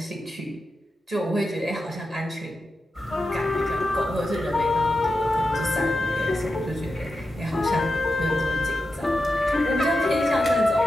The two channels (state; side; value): normal; both; correlation 0.90